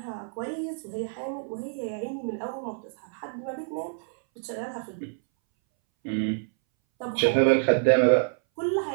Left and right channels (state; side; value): silent; left; 60 dB below the other